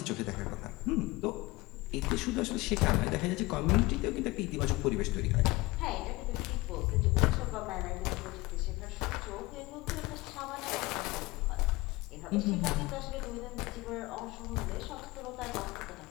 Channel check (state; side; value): quieter; right; 21.7 dB